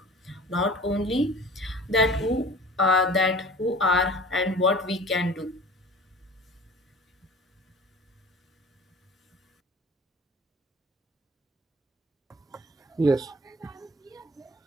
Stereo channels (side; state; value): both; normal; correlation 0.43